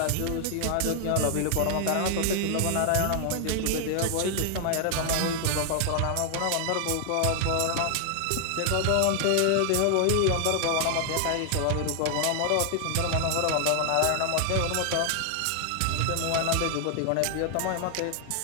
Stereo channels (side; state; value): both; different; correlation 0.00